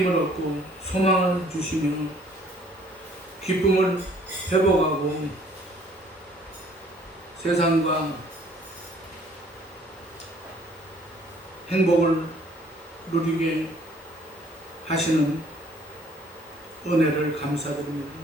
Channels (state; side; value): normal; both; correlation 0.59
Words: 얻고 소망을 주시며 기쁨을 회복하고 세상과 행복을 누리게 하시는 은혜를 감사드립니다.